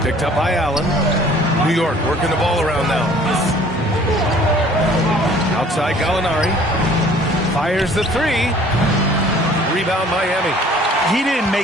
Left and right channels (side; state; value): both; normal; correlation 0.53